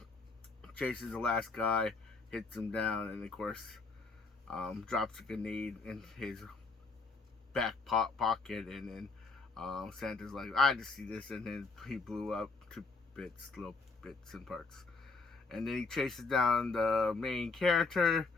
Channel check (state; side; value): quieter; right; 4.0 dB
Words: chases the last guy, hits him down, and of course, drops a grenade in his back pocket. And then Santa's like, I just see this, and then he blew up to little bits and parts. And then he chases down the main character,